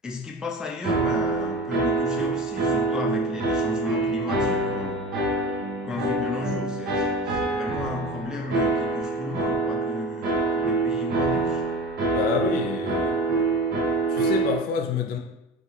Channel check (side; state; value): both; normal; correlation 0.33